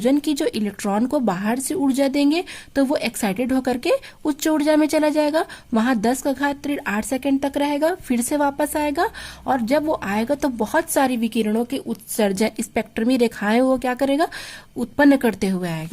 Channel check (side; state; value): both; identical; correlation 1.00